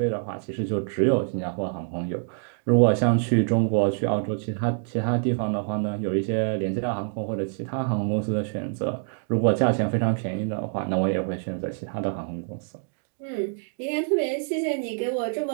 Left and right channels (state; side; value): silent; left; 61 dB below the other